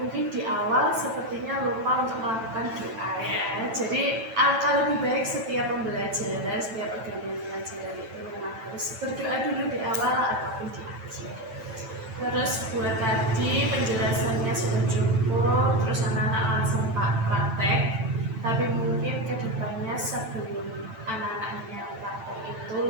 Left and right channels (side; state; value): left; late; 9.0 ms